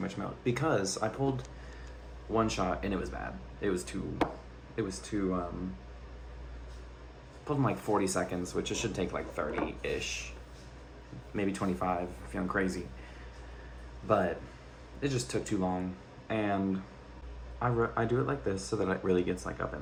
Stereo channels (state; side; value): identical; both; correlation 1.00